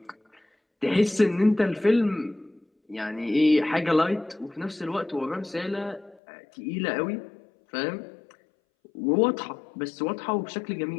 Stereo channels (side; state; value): right; drops out; at 6.2 s